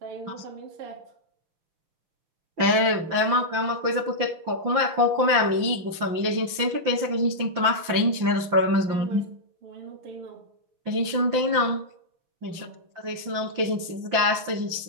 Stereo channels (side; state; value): left; late; 5.9 ms